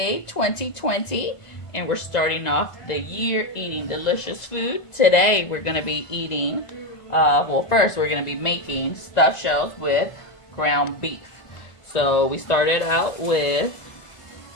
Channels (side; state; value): right; late; 1.5 ms